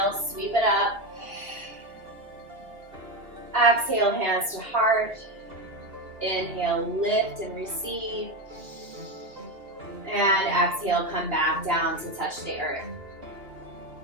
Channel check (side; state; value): left; late; 2.6 ms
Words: sweep it up. Exhale, hands to heart. Inhale, lift and receive. And exhale, come back down to touch the earth.